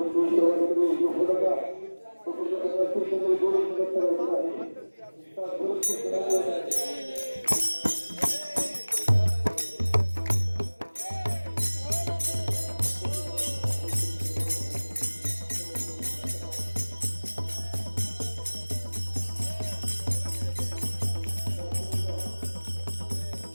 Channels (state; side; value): inverted; both; correlation -1.00